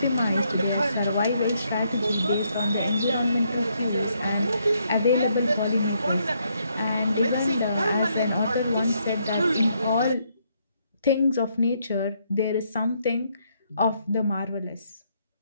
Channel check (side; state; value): both; inverted; correlation -0.74